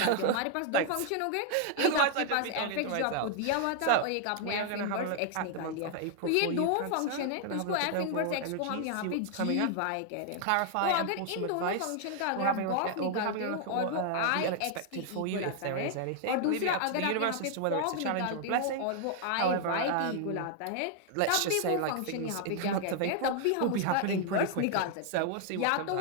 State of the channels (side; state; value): both; different; correlation 0.00